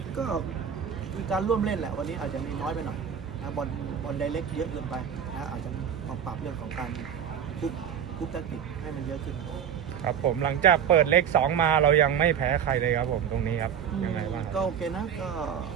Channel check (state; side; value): quieter; left; 8.3 dB